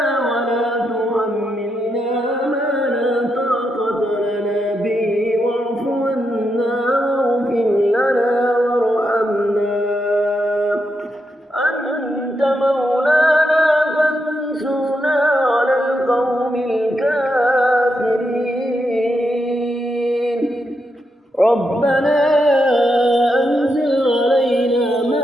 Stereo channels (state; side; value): normal; both; correlation 0.83